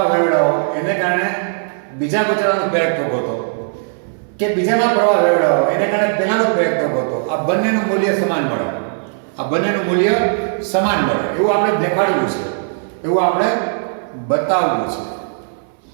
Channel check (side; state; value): left; silent; 66 dB below the other